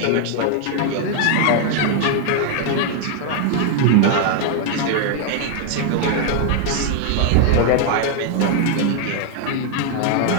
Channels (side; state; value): both; different; correlation 0.00